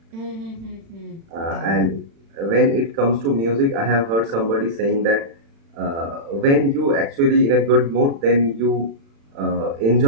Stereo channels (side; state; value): left; late; 36 ms